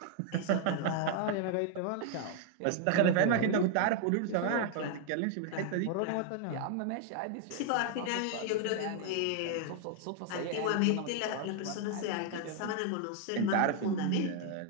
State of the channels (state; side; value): different; both; correlation 0.00